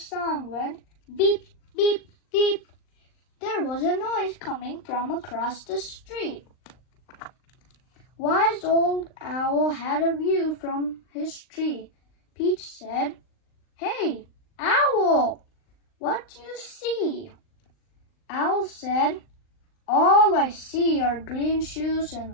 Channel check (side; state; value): right; late; 39 ms